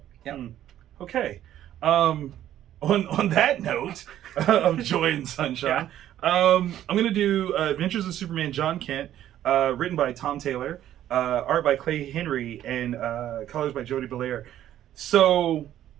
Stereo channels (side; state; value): left; quieter; 11.9 dB